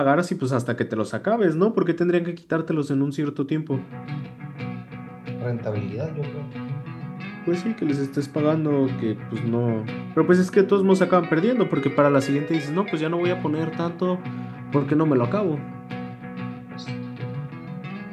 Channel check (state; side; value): identical; both; correlation 1.00